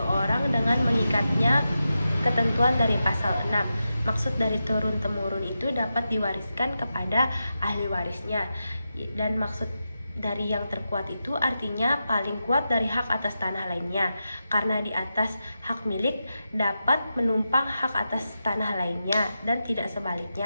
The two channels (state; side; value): inverted; both; correlation -0.89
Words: dengan mengikatnya ketentuan dari pasal 6. Maksud dari turun-temurun itu dapat diwariskan kepada ahli warisnya. Dan maksud dari yang terkuat itu artinya paling kuat dari hak atas tanah lainnya, karena di atas hak milik dapat menumpang hak atas tanah lainnya dan tidak